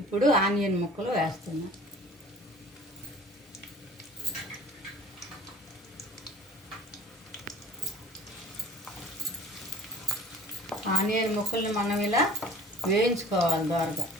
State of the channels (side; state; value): both; normal; correlation 0.47